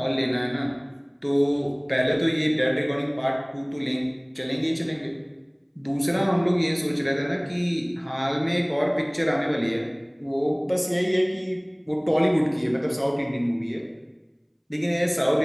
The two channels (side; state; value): both; identical; correlation 1.00